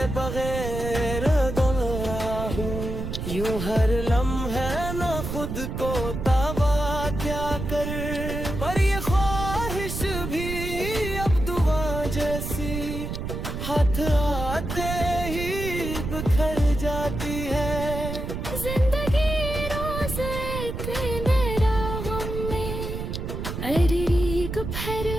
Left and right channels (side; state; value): right; noise; rumble, 5 dB below the sound